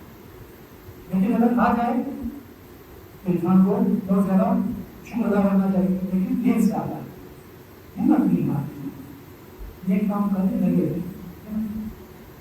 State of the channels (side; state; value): both; identical; correlation 1.00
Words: لیکن اگر آ جائے تو انسان کو بہت زیادہ شکر ادا کرنا چاہیے، لیکن دیر سے آتا ہے، ہمت نہیں مارتی، نیک کام کرنے لگے